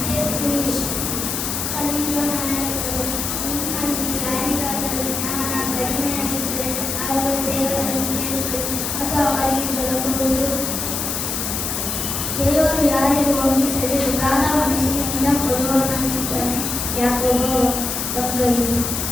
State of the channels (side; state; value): left; noise; hiss, 2 dB below the sound